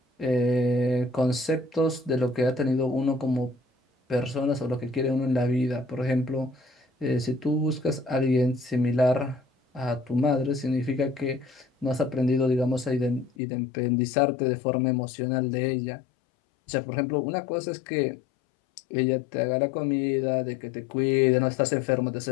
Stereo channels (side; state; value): right; drops out; at 13.3 s